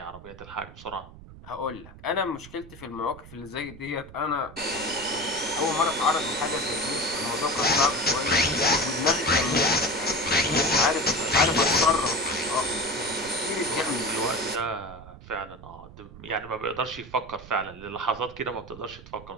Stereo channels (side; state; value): right; noise; rumble, 18 dB below the sound